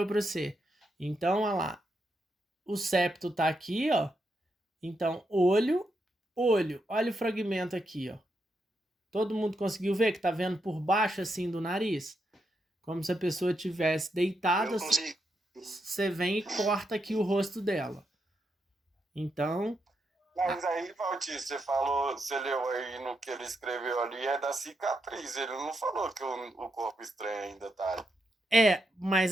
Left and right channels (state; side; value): normal; both; correlation 0.83